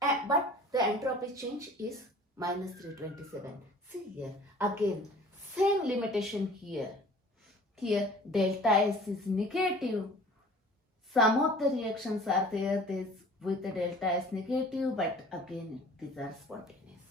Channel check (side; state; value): both; normal; correlation 0.47